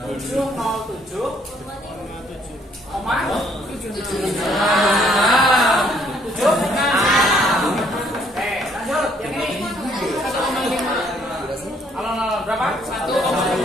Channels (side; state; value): both; normal; correlation 0.65